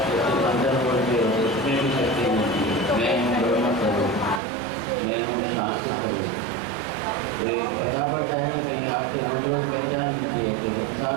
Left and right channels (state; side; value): drops out; left; at 4.4 s